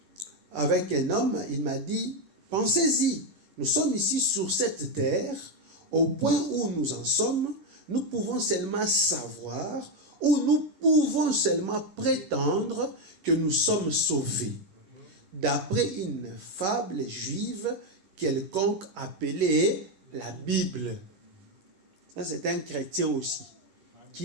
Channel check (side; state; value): left; late; 11 ms